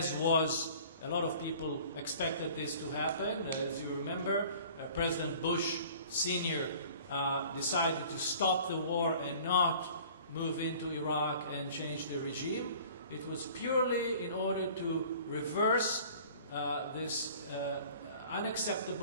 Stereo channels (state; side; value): inverted; both; correlation -0.48